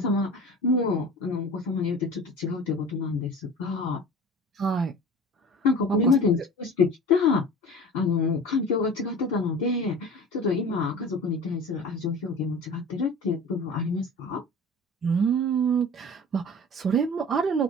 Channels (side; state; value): both; normal; correlation 0.38